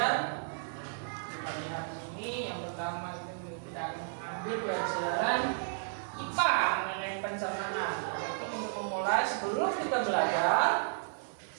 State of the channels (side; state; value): left; silent; digital silence